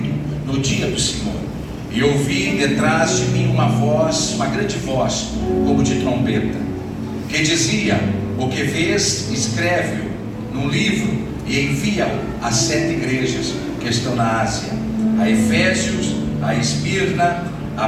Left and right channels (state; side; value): identical; both; correlation 1.00